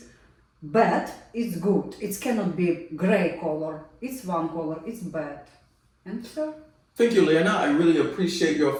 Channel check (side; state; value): both; identical; correlation 1.00